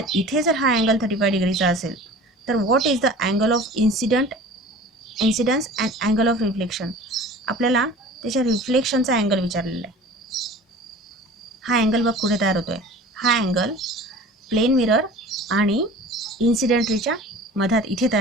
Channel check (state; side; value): normal; both; correlation 0.42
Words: इथे जर हा angle 35 डिग्रीचा असेल तर what is the angle of incidence and angle of reflection? आपल्याला त्याच्या रिफ्लेक्शनचा अँगल विचारलेला आहे. हा अँगल बघ कुठे तयार होतो आहे. हा अँगल प्लेन मिरर आणि इन्सिडेंट रेच्या मधात इथे